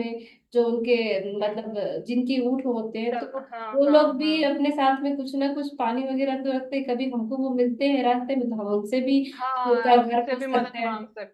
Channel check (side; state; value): both; identical; correlation 1.00